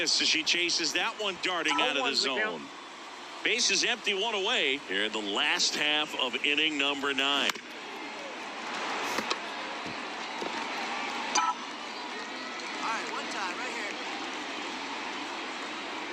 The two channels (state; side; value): identical; both; correlation 1.00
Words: as she chases that one darting out of the zone. Base is empty, 1 away here in the last half of inning number 9. All right, one time right here.